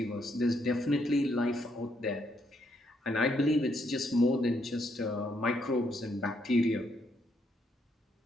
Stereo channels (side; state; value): both; normal; correlation 0.74